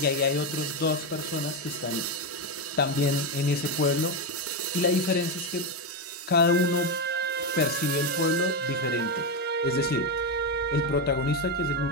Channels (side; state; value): both; normal; correlation 0.09